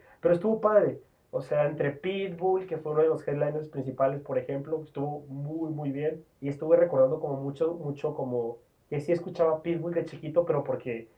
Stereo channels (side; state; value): both; identical; correlation 1.00